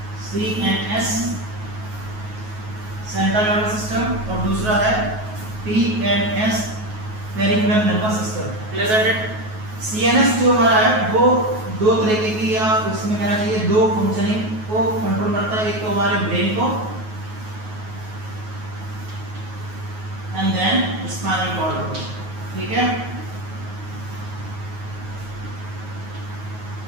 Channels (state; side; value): late; left; 9.4 ms